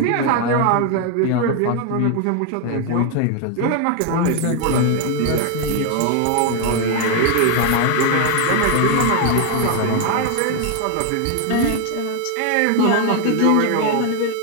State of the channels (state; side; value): different; both; correlation 0.00